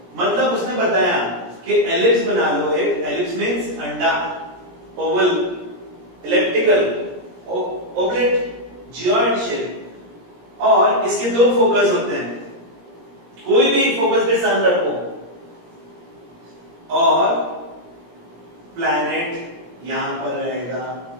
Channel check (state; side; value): late; left; 17 ms